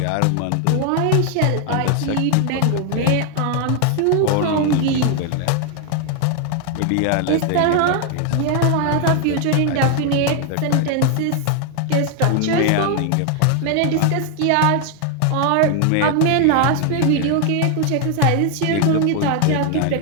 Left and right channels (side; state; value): both; different; correlation 0.00